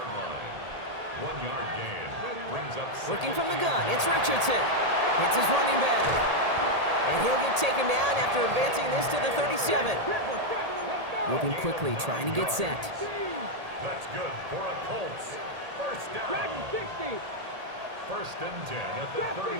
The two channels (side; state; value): left; late; 1.8 ms